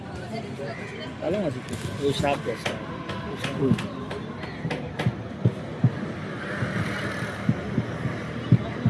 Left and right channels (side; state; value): both; identical; correlation 1.00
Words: ভালো আছে ওই সাপ আছে